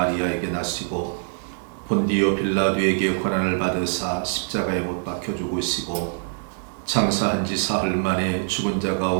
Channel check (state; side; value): silent; left; digital silence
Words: 나시고 본디오 빌라도에게 고난을 받으사 십자가에 못 박혀 죽으시고 장사한 지 사흘 만에 죽은 자